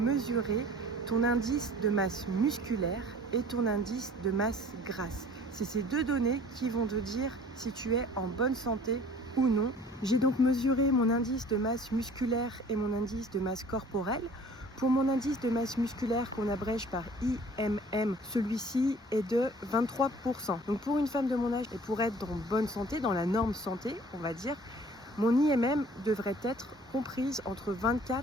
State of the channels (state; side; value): normal; both; correlation 0.50